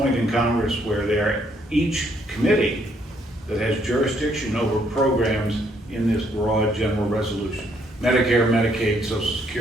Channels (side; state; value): both; normal; correlation 0.70